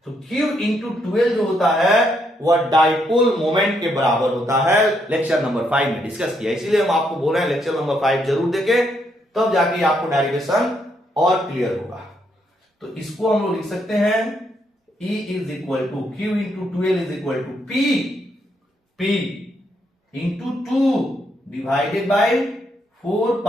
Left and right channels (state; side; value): normal; both; correlation 0.76